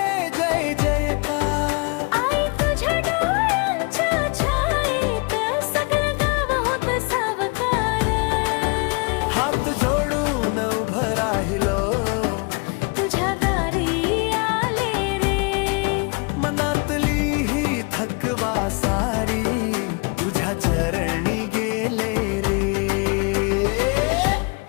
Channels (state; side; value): quieter; right; 32.0 dB